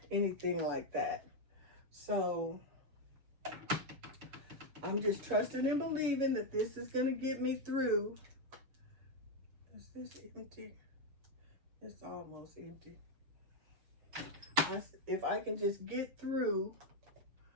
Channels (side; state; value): left; late; 6.8 ms